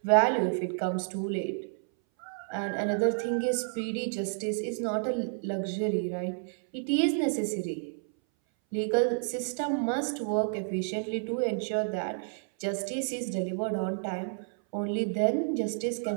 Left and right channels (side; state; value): left; silent; 58 dB below the other